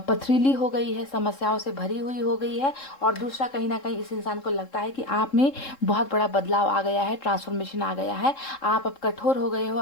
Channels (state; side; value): late; right; 3.7 ms